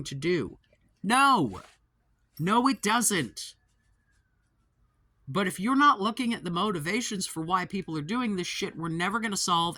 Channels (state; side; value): identical; both; correlation 1.00